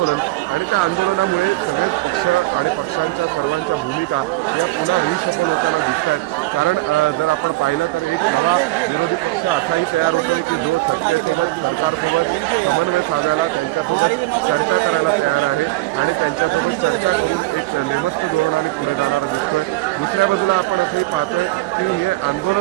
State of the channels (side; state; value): left; quieter; 19.4 dB